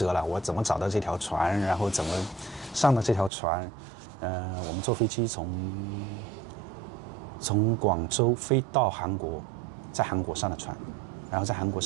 了，我怎么找到这条船，然后怎么上的这条船。我们坐飞机从广州飞到韩国，在韩国上了船，然后在韩国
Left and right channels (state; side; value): drops out; left; at 3.3 s